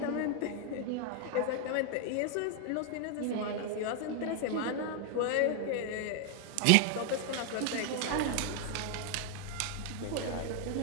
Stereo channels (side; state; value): both; different; correlation 0.00